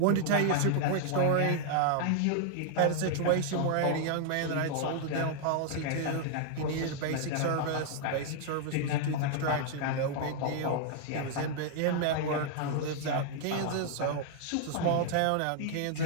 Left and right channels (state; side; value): different; both; correlation -0.01